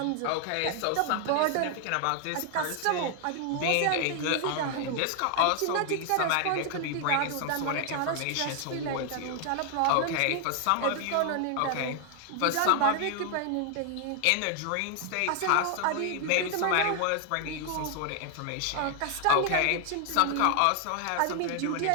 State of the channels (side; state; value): both; different; correlation 0.00